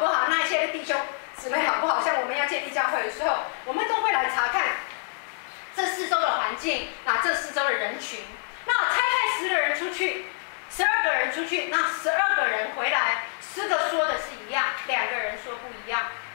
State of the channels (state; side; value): silent; right; 61 dB below the other